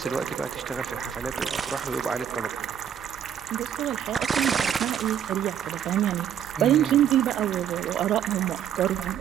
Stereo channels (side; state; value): left; quieter; 9.1 dB